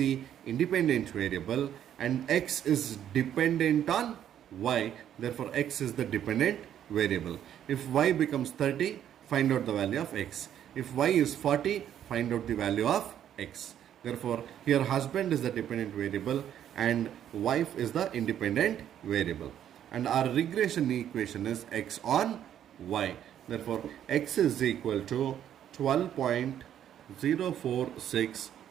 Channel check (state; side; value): quieter; left; 10.3 dB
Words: independent variable and x is dependent on y. Therefore, x is the dependent variable. If y becomes 30, find out the value of x. If y is 40, find out the value of x. Therefore, here husband is the dependent variable and wife is the independent variable. And our regression equation is x on y. Therefore, x is equal to 12.046